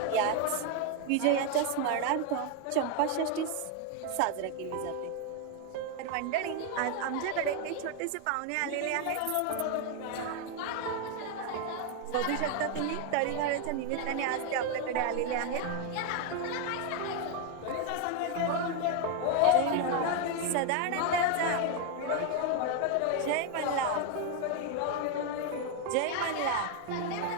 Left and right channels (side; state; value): both; different; correlation 0.01